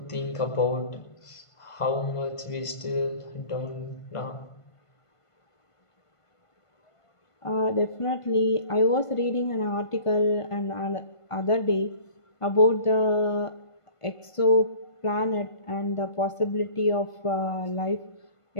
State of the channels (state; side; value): late; right; 1.5 ms